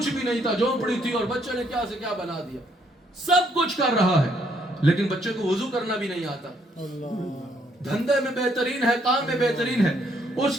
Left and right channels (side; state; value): both; normal; correlation 0.70